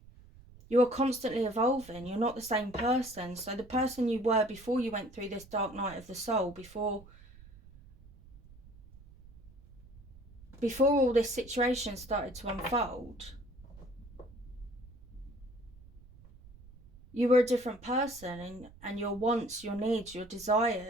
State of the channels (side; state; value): right; noise; rumble, 21 dB below the sound